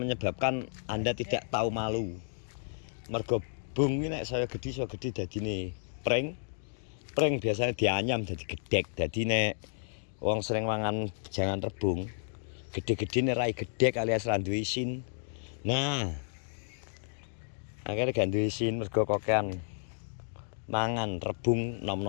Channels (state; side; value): silent; right; digital silence